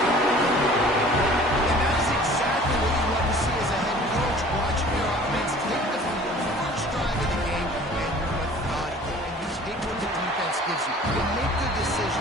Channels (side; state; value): both; normal; correlation 0.48